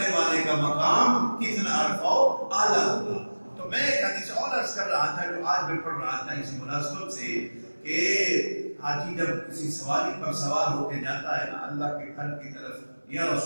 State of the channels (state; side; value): inverted; both; correlation -1.00